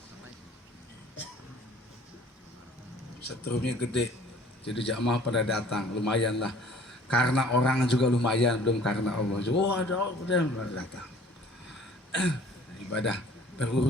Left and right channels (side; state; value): both; normal; correlation 0.51